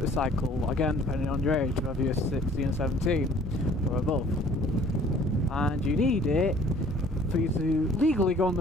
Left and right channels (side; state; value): both; normal; correlation 0.54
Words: again depending on your age, whether you're 16 or 17 or above. And you need it for you to legally go on